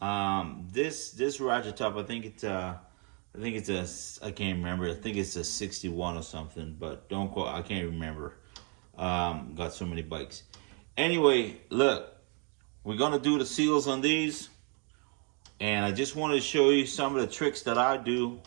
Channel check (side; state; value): left; quieter; 35.9 dB